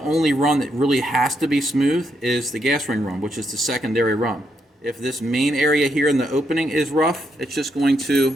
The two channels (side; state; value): both; normal; correlation 0.79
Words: run that really has to be smooth is the gas ring run, which is the secondary run. If this main area here in the opening is rough, it's just going to